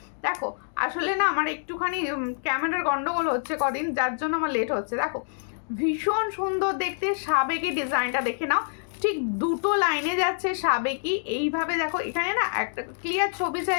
দেখো আসলে না আমার একটুখানি ক্যামেরার গন্ডগোল হচ্ছে কদিন, যার জন্য আমার লেট হচ্ছে। দেখো ভীষণ সুন্দর দেখতে সাবেকি ডিজাইনটা দেখে নাও, ঠিক দুটো লাইনে যাচ্ছে সাবেকি এইভাবে। দেখো এখানে না একটা ক্লিয়ার ছবি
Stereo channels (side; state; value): right; silent; digital silence